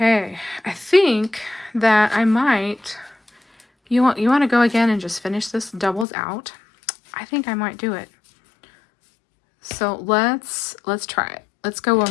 I think that I might... You want to go again and just finish this doubles out? I think I might do it. So let's try it. Let's go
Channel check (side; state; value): right; drops out; at 6.1 s